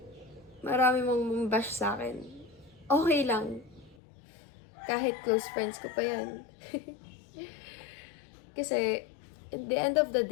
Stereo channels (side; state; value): right; drops out; at 4.0 s